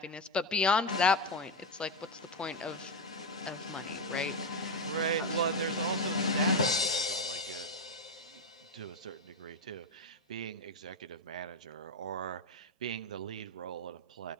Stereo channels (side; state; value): both; normal; correlation 0.09